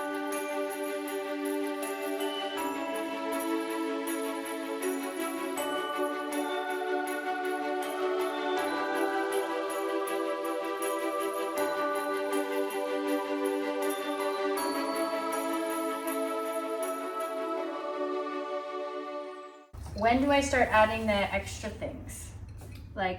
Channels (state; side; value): identical; both; correlation 1.00